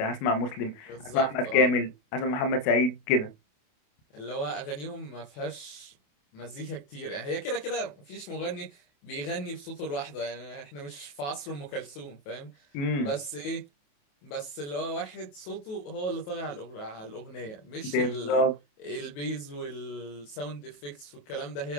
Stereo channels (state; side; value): late; right; 28 ms